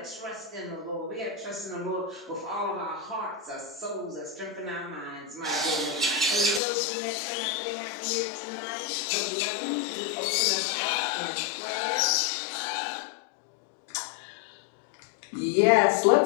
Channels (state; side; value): drops out; right; at 6.6 s